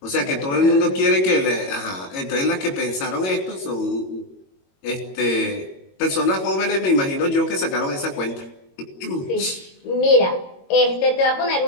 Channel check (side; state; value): right; late; 22 ms